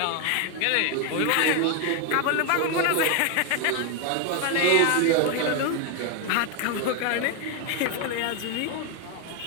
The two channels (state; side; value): different; both; correlation 0.01